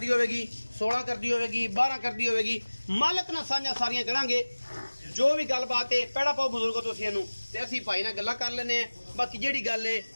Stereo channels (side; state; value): both; inverted; correlation -1.00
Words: होगी, 16 कर दी होगी, 12 कर दी होगी। मालक ना साझा सारियां करांगे जो भी गलबात है। पैड़ा पाओ बुजुर्गो तुसीं इहनूं ते असीं भाई नाल गल्लां कर लैने हैं। बाकी जिहड़ी गल है